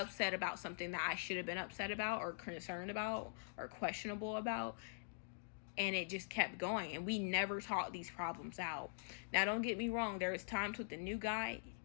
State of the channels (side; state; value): right; silent; digital silence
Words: about something that I should have been upset about or concerned about or questionable about, and it just kept going, and we never talked these problems out. Now, don't get me wrong, there was times with the new guy,